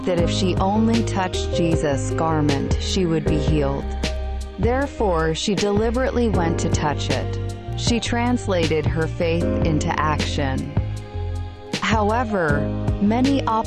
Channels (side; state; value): both; identical; correlation 1.00